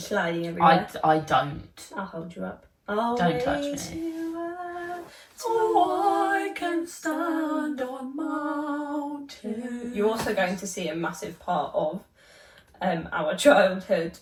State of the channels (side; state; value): both; identical; correlation 1.00